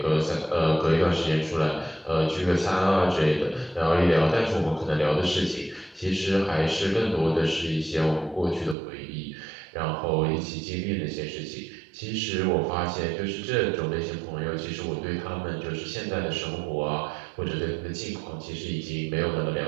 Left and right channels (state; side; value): drops out; left; at 8.8 s